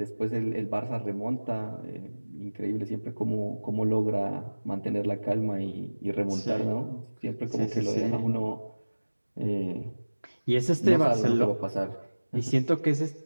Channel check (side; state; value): both; inverted; correlation -1.00